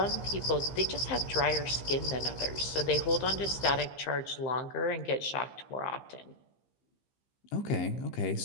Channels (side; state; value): right; late; 15 ms